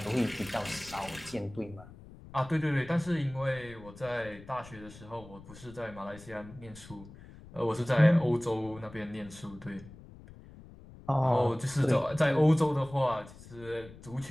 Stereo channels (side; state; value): left; noise; rumble, 18 dB below the sound